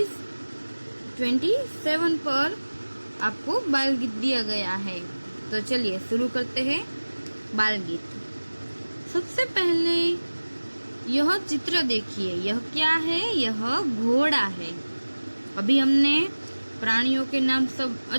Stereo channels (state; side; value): inverted; both; correlation -1.00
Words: 27 पर आपको बाल गीत दिया गया है। तो चलिए शुरू करते हैं बाल गीत। सबसे पहले यह चित्र देखिए, यह क्या है? यह घोड़ा है। अभी हमने प्राणियों के नाम सब